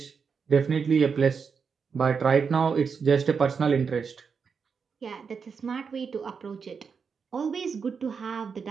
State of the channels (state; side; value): quieter; left; 5.9 dB